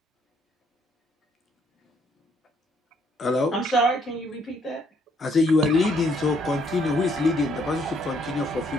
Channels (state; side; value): normal; both; correlation 0.69